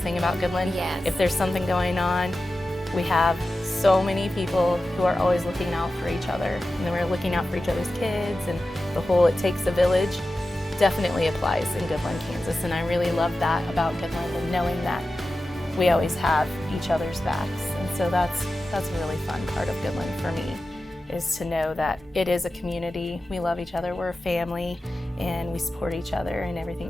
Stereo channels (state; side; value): normal; both; correlation 0.93